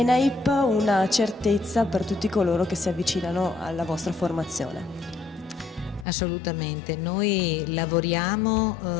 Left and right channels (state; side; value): drops out; right; at 6.1 s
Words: una certezza per tutti coloro che si avvicinano alla vostra formazione. Assolutamente, noi lavoriamo